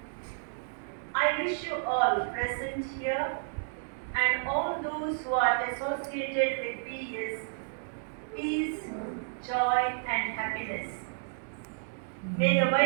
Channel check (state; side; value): silent; left; digital silence